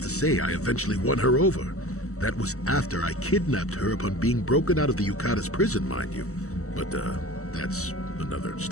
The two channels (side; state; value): right; late; 0.64 ms